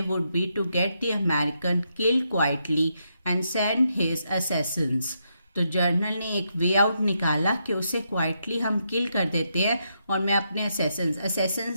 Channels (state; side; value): inverted; both; correlation -0.81